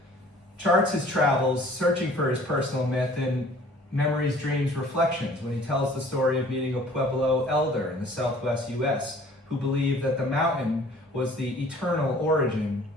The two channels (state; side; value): normal; both; correlation 0.52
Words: charts his travels searching for his personal myth in Memories, Dreams, Reflections, when he tells the story of meeting a Pueblo elder in the southwest U.S. who believed that the mountain was the eternal origin